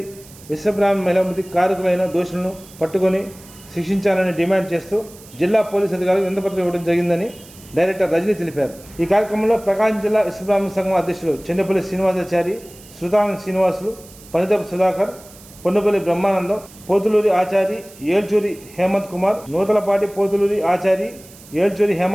విశ్వబ్రాహ్మణ మహిళామృతి కారకులైన దోషులను పట్టుకొని శిక్షించాలని డిమాండ్ చేస్తూ జిల్లా పోలీసు అధికారులకు వినతిపత్రం ఇవ్వడం జరిగిందని డైరెక్టర్ రజనీ తెలిపారు. ఈ కార్యక్రమంలో ప్రకాశం జిల్లా విశ్వబ్రాహ్మణ సంఘం అధ్యక్షులు చెండపల్లి శ్రీనివాసాచారి, శృతాంగ శ్రీనివాసులు, పనిదపు సుధాకర్, పొన్నుపల్లి బ్రహ్మానందం, పోతులూరి ఆచారి, ఏల్చూరి హేమంత్ కుమార్, నూతలపాటి పోతులూరి ఆచారి, ఏల్చూరి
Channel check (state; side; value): noise; right; hiss, 21 dB below the sound